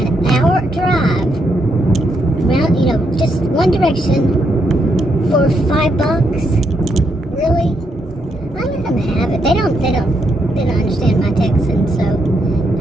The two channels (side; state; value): both; normal; correlation 0.78